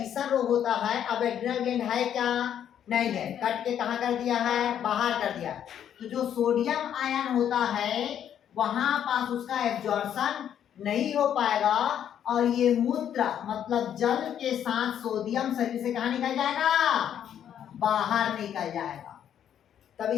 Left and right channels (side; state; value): right; quieter; 9.7 dB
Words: रोग होता है, अब एड्रिनल ग्लैंड है क्या, नहीं है, कट के कहाँ कर दिया है, बाहर कर दिया। तो जो सोडियम आयन होता है वहां पास उसका एब्जॉर्प्शन नहीं हो पाएगा और ये मूत्र मतलब जल के साथ सोडियम शरीर से कहाँ निकल जाएगा, बाहर निकल जाएगा। तब